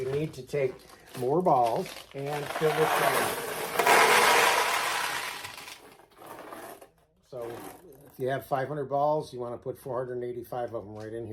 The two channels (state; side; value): identical; both; correlation 1.00